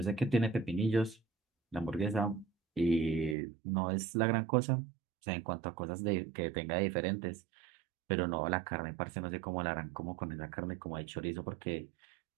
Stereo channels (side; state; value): left; drops out; at 3.4 s